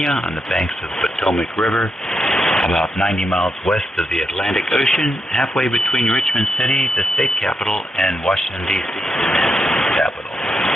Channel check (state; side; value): normal; both; correlation 0.83